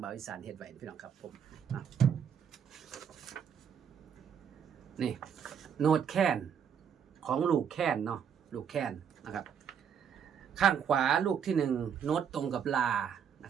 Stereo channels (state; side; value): quieter; left; 7.8 dB